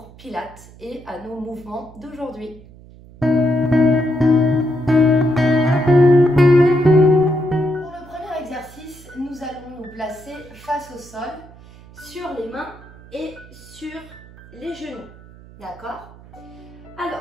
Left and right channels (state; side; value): noise; right; hum, 21 dB below the sound